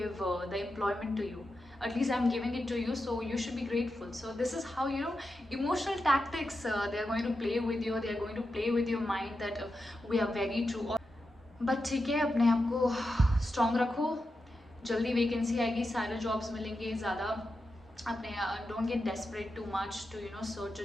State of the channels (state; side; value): normal; both; correlation 0.89